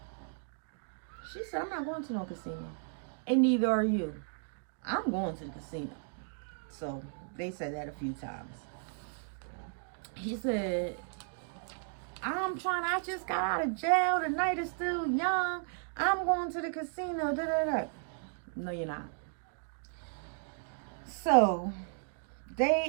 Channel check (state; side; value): silent; left; digital silence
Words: She said, I'm not going to no casino. And neither are you. I'm going to the casino. So they said that a few times. He said, I just got out of jail. The night is still young. I'm going to the casino. No, you're not. So